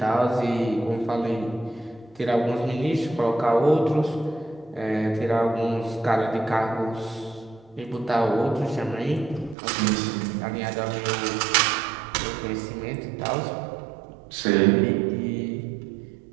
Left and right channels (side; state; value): left; drops out; at 9.6 s